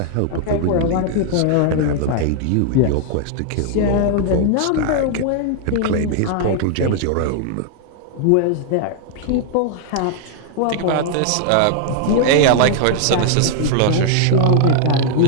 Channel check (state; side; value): different; both; correlation 0.00